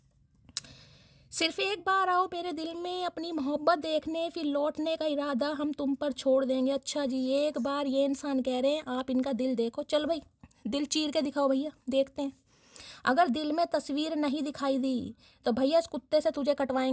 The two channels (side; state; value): both; identical; correlation 1.00